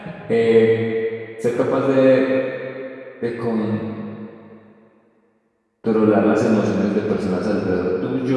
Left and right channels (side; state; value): both; identical; correlation 1.00